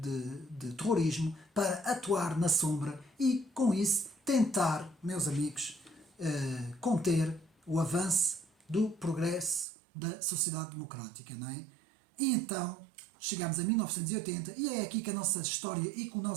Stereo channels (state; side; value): drops out; left; at 9.7 s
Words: terrorismo para atuar na sombra e, com isso, tentar, meus amigos, conter o avanço do progresso da sociedade democrática, não é? E então chegamos a 1980 e é aqui que a nossa história e que o